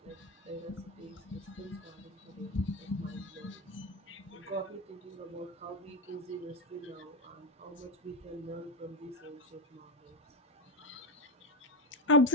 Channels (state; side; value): normal; both; correlation 0.04